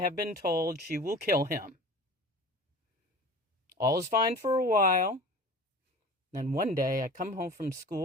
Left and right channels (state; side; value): normal; both; correlation 0.39